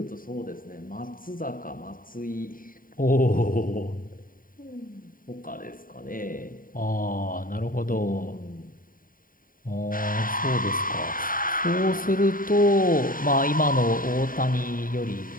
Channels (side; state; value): right; late; 0.41 ms